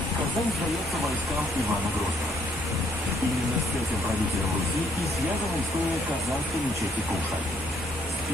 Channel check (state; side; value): normal; both; correlation 0.68